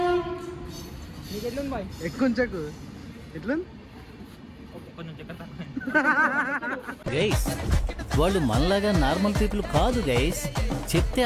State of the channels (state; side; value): identical; both; correlation 1.00